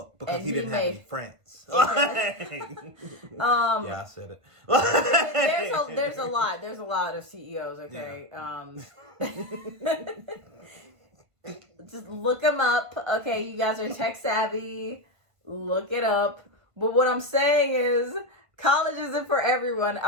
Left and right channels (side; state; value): left; late; 1.5 ms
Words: because he didn't have any friends. Okay. Yeah, I said it. There's a lot. There's a lot of CEOs. Okay. Yeah. Just look them up. Okay, you guys are tech savvy. Look it up. But what I'm saying is, college isn't for everyone.